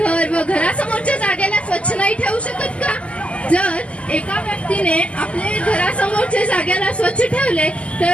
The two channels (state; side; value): late; right; 0.062 ms